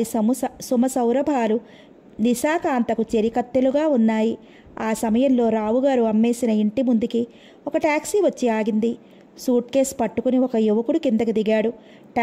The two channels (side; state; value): both; identical; correlation 1.00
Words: సుమసౌరభాలు నిశాకాంతకు చెరికత్తెలుగా ఉన్నాయి. ఆ సమయంలో రావుగారు అమ్మేసిన ఇంటి ముందుకి ఒక టాక్సీ వచ్చి ఆగింది. సూట్ కేస్ పట్టుకుని ఒక యువకుడు కిందకి దిగాడు.